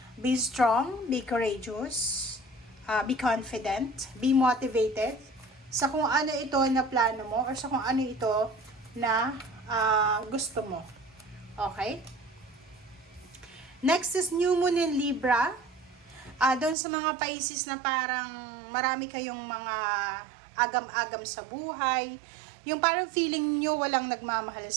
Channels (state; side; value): drops out; left; at 16.8 s